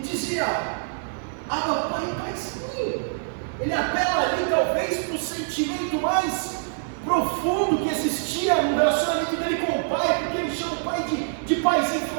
Abba, Pai, Paizinho. Ele apela ali talvez para o sentimento mais profundo que existia no relacionamento dele com o Pai, porque ele chama o Pai de Paizinho. Ele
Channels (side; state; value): left; silent; digital silence